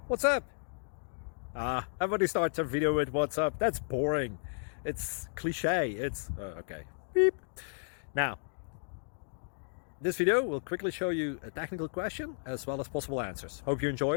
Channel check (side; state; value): right; silent; digital silence